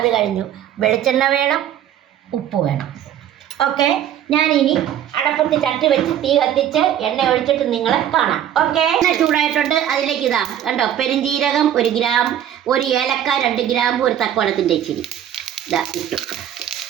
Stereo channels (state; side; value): quieter; left; 10.7 dB